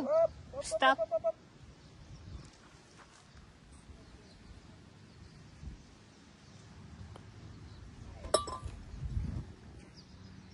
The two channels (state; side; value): identical; both; correlation 1.00